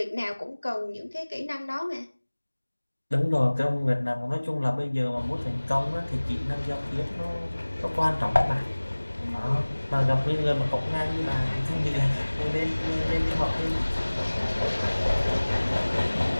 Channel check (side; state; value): both; inverted; correlation -1.00